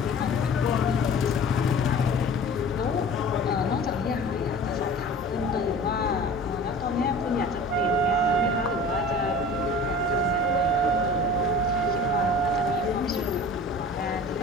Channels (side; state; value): both; normal; correlation 0.41